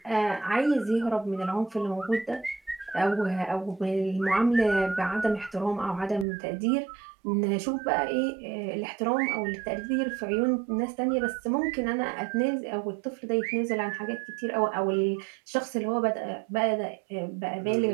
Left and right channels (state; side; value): drops out; left; at 6.2 s